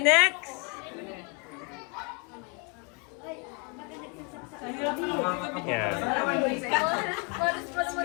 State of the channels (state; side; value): quieter; right; 32.1 dB